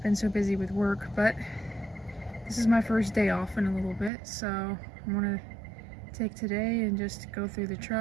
been so busy with work, but this is my first day off in a little bit, so I'm gonna take today and just go through the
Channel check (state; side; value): drops out; left; at 4.1 s